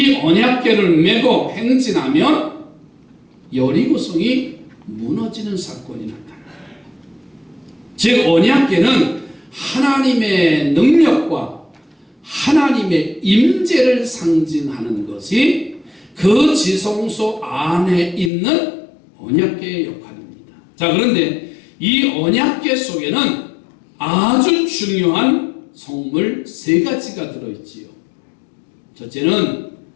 언약궤를 메고 행진하면 여리고성이 무너지는 사건이 나타나요. 즉 언약궤는 하나님의 능력과 하나님의 임재를 상징하는 것이 그 지성소 안에 있는 언약궤의 역할입니다. 자, 그런데 이 언약궤 속에는 아주 중요한 성물 세 가지가 들어있지요. 첫째는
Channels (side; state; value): right; drops out; at 18.3 s